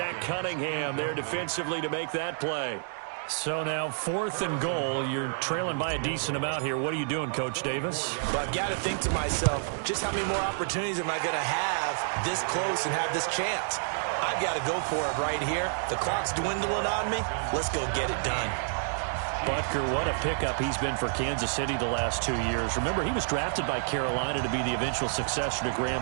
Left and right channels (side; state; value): left; silent; digital silence